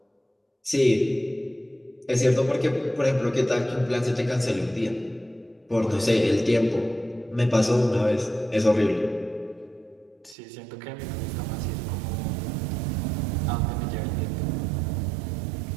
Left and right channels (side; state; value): left; drops out; at 10.4 s